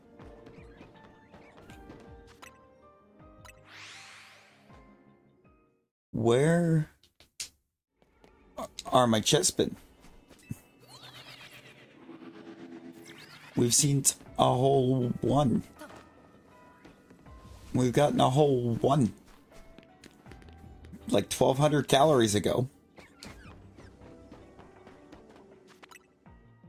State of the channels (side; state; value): both; identical; correlation 1.00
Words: Where are my chestmen? We've seen a whole one. We've gotten a whole one. Like 1,200 calories ago.